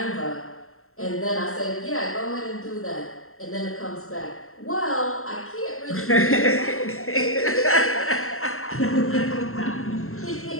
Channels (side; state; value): right; late; 0.62 ms